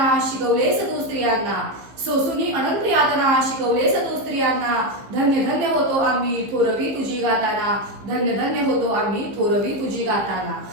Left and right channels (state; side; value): late; left; 15 ms